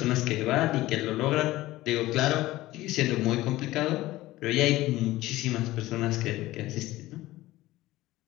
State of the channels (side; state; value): right; quieter; 17.2 dB